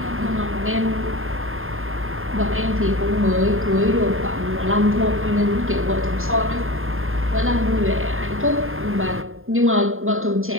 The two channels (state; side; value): late; left; 0.60 ms